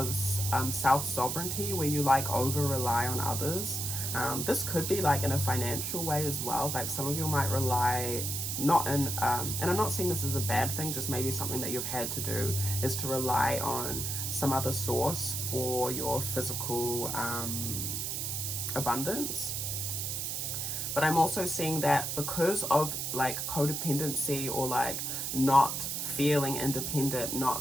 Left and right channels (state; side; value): noise; right; hiss, 2 dB below the sound